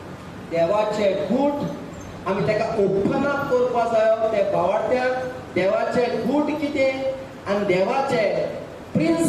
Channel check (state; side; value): identical; both; correlation 1.00